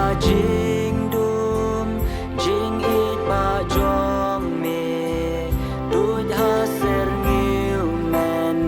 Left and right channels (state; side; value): identical; both; correlation 1.00